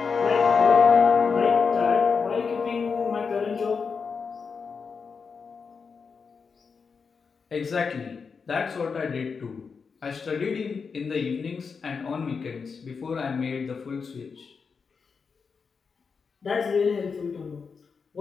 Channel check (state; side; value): quieter; right; 5.4 dB